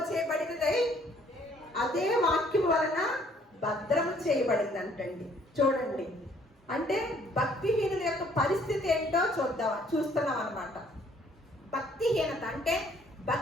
చేయబడినదై అదే వాక్యం వలన భద్రము చేయబడిందంటండి. చూడండి, అంటే భక్తిహీనుల యొక్క పరిస్థితి ఏంటో చూస్తున్నాం అన్నమాట. భక్తిహీనత అంటే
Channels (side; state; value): both; normal; correlation 0.62